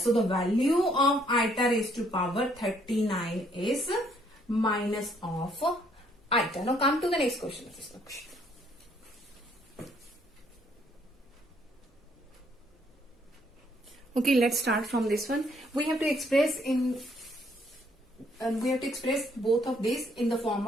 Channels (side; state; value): both; normal; correlation 0.67